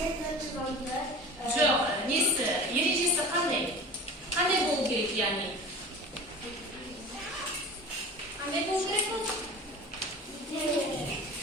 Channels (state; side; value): normal; both; correlation 0.37